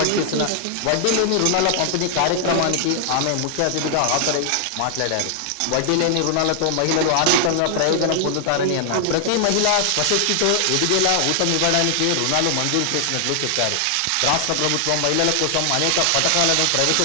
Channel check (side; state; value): both; different; correlation 0.00